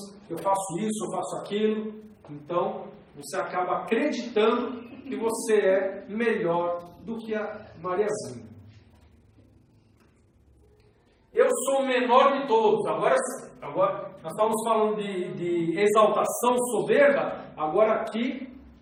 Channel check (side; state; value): both; identical; correlation 1.00